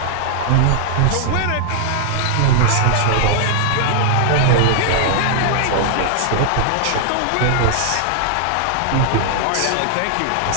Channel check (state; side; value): different; both; correlation 0.00